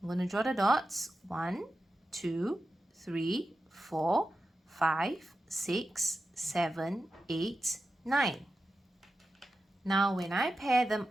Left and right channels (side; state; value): both; normal; correlation 0.91